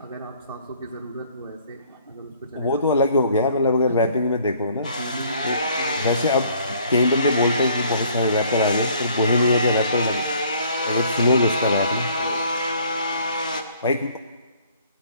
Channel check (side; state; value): both; inverted; correlation -0.59